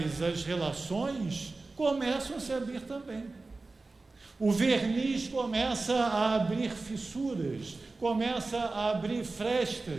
as relações começam a se abrir também. O verniz começa a abrir fissuras, começa a abrir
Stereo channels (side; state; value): left; quieter; 3.5 dB